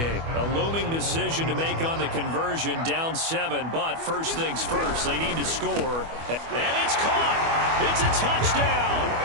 A looming decision to make on the conversion, down 7, but first things first, they need to score. And it's caught! It's a touchdown!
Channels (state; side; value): late; left; 25 ms